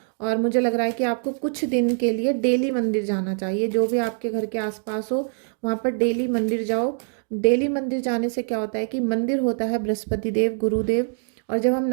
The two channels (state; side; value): silent; left; 63 dB below the other